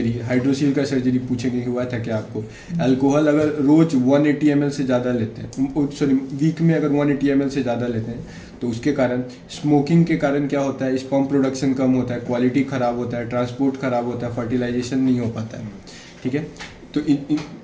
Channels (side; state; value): both; identical; correlation 1.00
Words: हाइड्रोसील का सर्जरी पूछेंगे कि हुआ था क्या आपको। अल्कोहल अगर रोज 180 ml से ज़्यादा लेते हैं, सॉरी वीक में अगर 180 ml से ज़्यादा लेते हैं, तो उसके कारण, स्मोकिंग के कारण क्या होता है, स्पर्म प्रोडक्शन कम होता है, क्वालिटी ख़राब होता है, ट्रांसपोर्ट ख़राब होता है, फर्टिलाइजेशन नहीं हो पाता है, ठीक है। तो